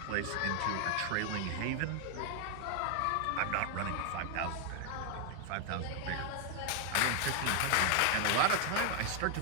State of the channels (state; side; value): different; both; correlation 0.00